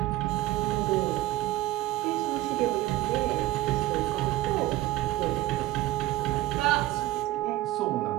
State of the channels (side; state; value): left; quieter; 16.8 dB